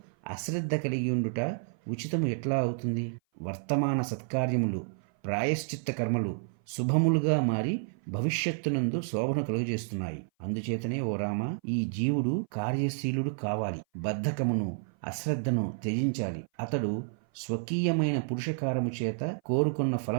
అశ్రద్ధ కలిగి ఉండుట ఉచితము ఎట్లా అవుతుంది? వర్తమాన సత్కార్యములు, ప్రాయశ్చిత్త కర్మలు శుభములుగా మారి భవిష్యత్తునందు శోభను కలుగజేస్తున్నాయి. అందుచేతనే ఓ రామ, ఈ జీవుడు కార్యశీలుడు కావాలి. బద్ధకమును, అశ్రద్ధను త్యజించాలి. అతడు స్వకీయమైన పురుషకారము చేత కోరుకున్న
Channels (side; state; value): left; silent; 56 dB below the other